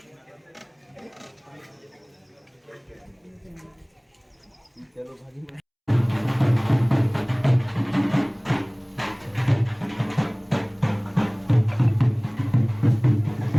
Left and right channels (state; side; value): identical; both; correlation 1.00